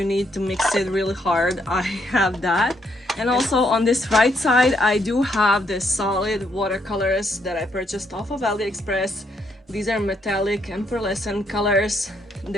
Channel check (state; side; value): normal; both; correlation 0.74